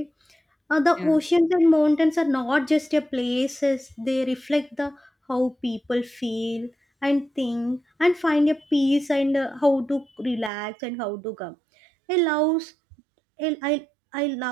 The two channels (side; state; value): left; drops out; at 10.5 s